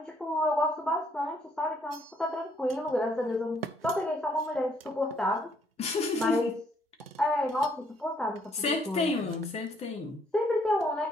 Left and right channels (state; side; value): normal; both; correlation 0.68